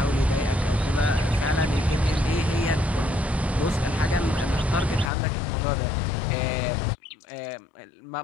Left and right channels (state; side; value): drops out; right; at 5.1 s